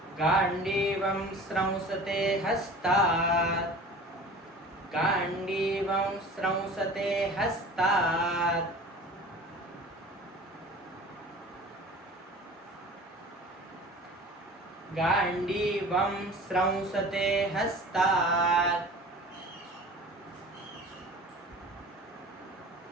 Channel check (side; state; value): both; normal; correlation 0.41